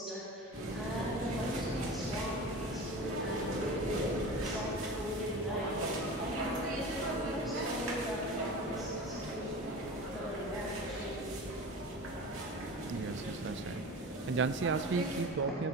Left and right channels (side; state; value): both; normal; correlation 0.33